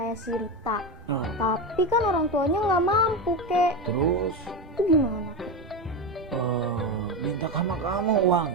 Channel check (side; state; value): both; normal; correlation 0.16